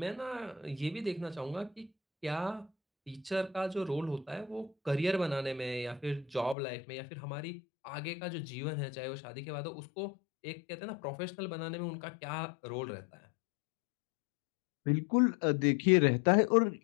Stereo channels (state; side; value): drops out; right; at 6.6 s